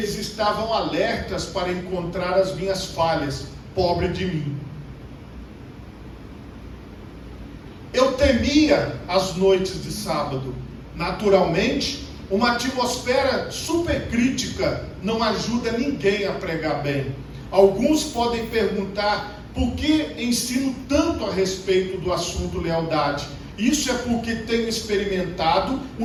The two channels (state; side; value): identical; both; correlation 1.00